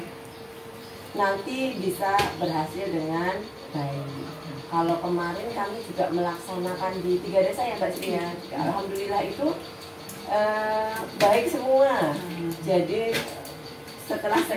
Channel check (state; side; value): identical; both; correlation 1.00